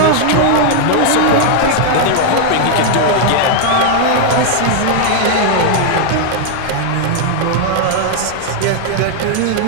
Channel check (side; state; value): both; different; correlation -0.01